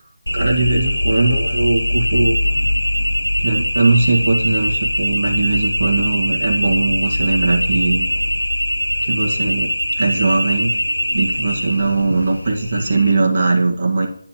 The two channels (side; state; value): both; inverted; correlation -0.94